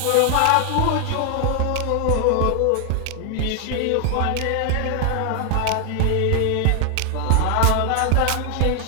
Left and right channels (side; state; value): both; different; correlation 0.00